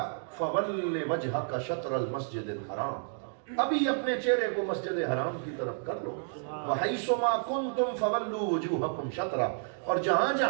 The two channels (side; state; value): left; silent; digital silence